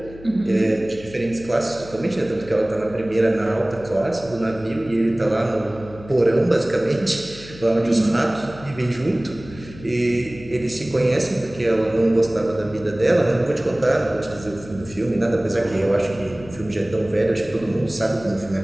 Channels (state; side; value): noise; left; hum, 17 dB below the sound